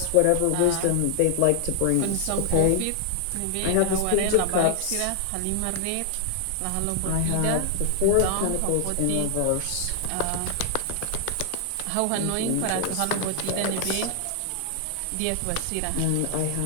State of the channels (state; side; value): different; both; correlation 0.00